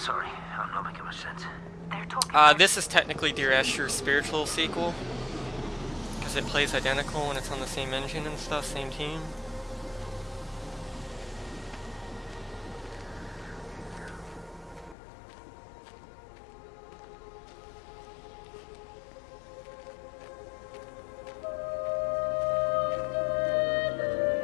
I'm not making much sense. They're talking. This is technically Dear Esther's spiritual sequel, because it plays identical and it's on the same engine and stuff, same team.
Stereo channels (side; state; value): right; drops out; at 15.0 s